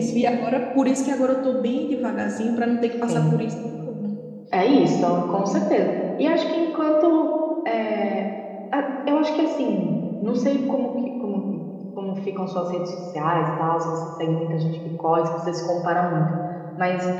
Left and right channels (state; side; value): identical; both; correlation 1.00